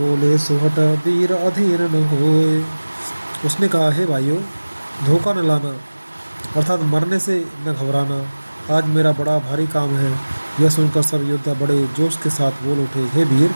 सुहट वीर अधीर न होए। उसने कहा, हे भाइयों, धोखा न लाना अर्थात मरने से न घबराना। आज मेरा बड़ा भारी काम है। यह सुनकर सब योद्धा बड़े जोश के साथ बोल उठे, हे वीर,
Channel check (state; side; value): inverted; both; correlation -1.00